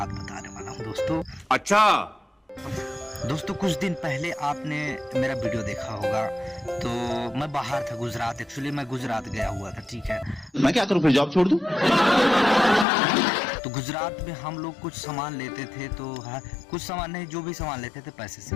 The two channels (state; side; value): drops out; right; at 12.9 s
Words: बताने वाला हूँ दोस्तों। अच्छा दोस्तों, कुछ दिन पहले आपने मेरा वीडियो देखा होगा। तो मैं बाहर था, गुजरात। एक्चुअली मैं गुजरात गया हुआ था, ठीक है। मैं क्या करूं, फिर जॉब छोड़ दूं? तो गुजरात में हम लोग कुछ सामान लेते थे, तो कुछ सामान नहीं, जो भी सामान लेते थे पैसे से